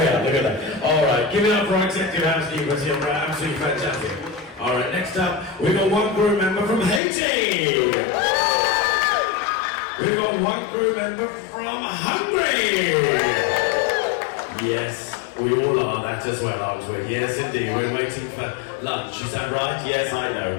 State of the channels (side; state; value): right; drops out; at 7.0 s